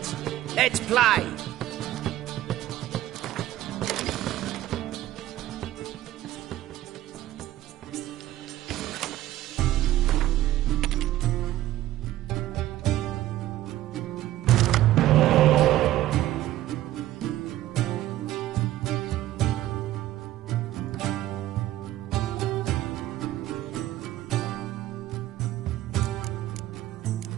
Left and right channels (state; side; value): quieter; left; 14.4 dB